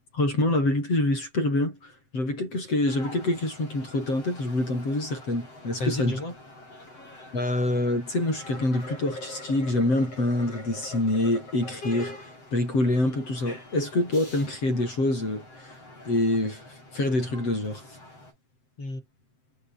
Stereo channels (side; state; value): right; late; 7.8 ms